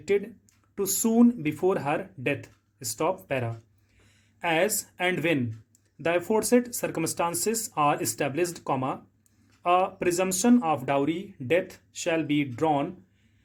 to soon before her death. Stop para. As and when the aforesaid circumstances are established, comma, a presumption of dowry death shall be drawn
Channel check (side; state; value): both; identical; correlation 1.00